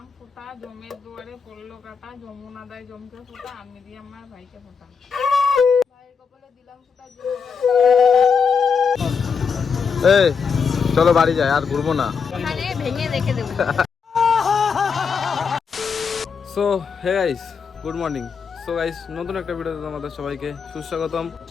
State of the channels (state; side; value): quieter; right; 5.9 dB